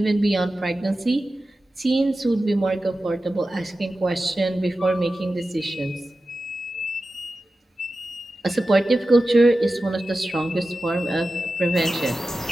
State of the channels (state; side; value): normal; both; correlation 0.94